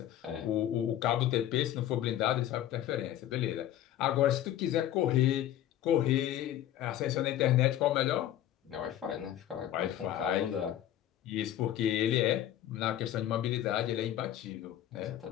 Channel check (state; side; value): quieter; right; 12.2 dB